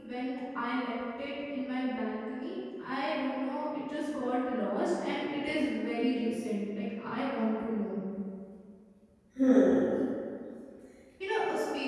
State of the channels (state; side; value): identical; both; correlation 1.00